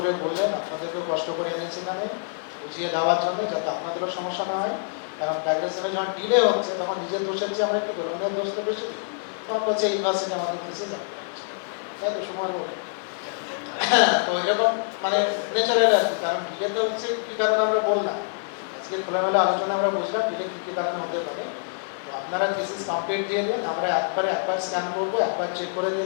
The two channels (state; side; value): silent; right; digital silence